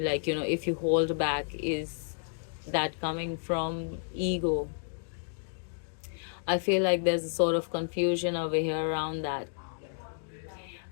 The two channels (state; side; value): silent; right; digital silence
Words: you hold back, is that coming from ego? I feel like there's a sort of confusion over here around that.